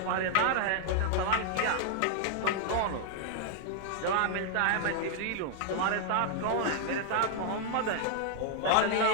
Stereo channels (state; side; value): different; both; correlation 0.00